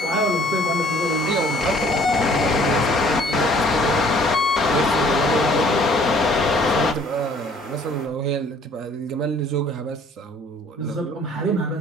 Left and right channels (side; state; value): both; normal; correlation 0.57